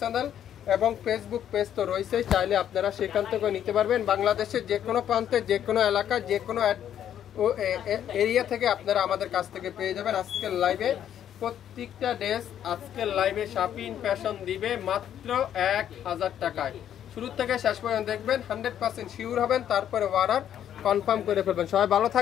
চ্যানেল এবং ফেসবুক পেজ তো রয়েছে, চাইলে আপনারা সেখান থেকে নিতে পারবেন। বাংলাদেশের যে কোনো প্রান্তে, যে কোনো এলাকা, যে কোনো এরিয়া থেকে আপনারা আমাদের কাছ থেকে পেয়ে যাবেন। আজকের লাইভে প্রত্যেকটা ড্রেস, আজকের লাইভে শাপিং ফ্যাশন দিবে মাত্র 1000 টাকায়। শুরু থেকে শেষ পর্যন্ত দেখবেন, 100% শিওর হবেন, তারপরে অর্ডার কনফার্ম করে ফেলবেন। সবাই ভালো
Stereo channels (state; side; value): quieter; right; 10.1 dB